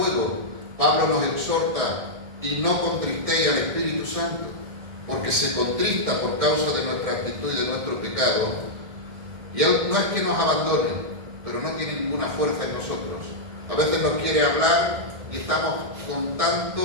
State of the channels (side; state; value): left; late; 2.1 ms